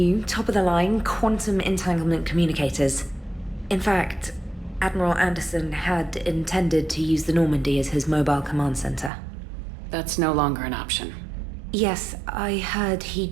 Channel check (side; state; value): left; drops out; at 9.1 s